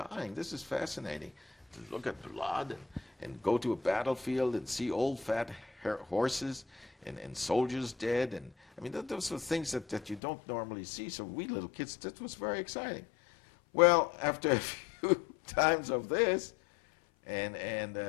This is fascinating. To look at blood and go to a battlefield and see old fat horses and soldiers dead. And I mean, those are things that you don't normally see. So we little kids, that was very exciting. Well, after a few times of this and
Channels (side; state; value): right; drops out; at 10.2 s